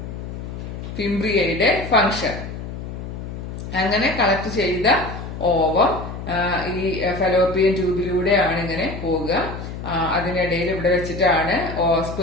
ഫിംബ്രിയയുടെ ഫംഗ്ഷൻ. അങ്ങനെ കളക്ട് ചെയ്ത ഓവം ഈ ഫലോപ്പിയൻ ട്യൂബിലൂടെയാണ് ഇങ്ങനെ പോവുക. അതിനിടയിൽ ഇവിടെ വെച്ചിട്ടാണ്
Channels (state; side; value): noise; left; hum, 8 dB below the sound